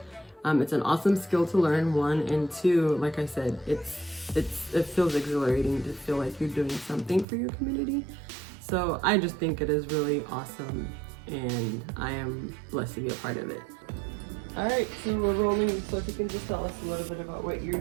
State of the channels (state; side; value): drops out; left; at 7.2 s